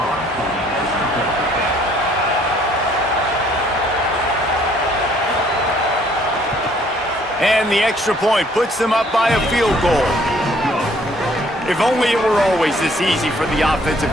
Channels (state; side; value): normal; both; correlation 0.61